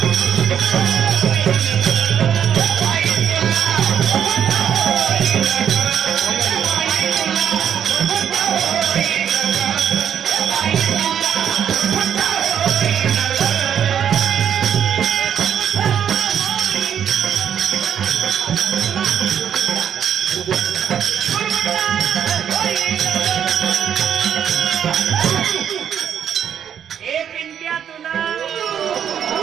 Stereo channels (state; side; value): quieter; left; 8.9 dB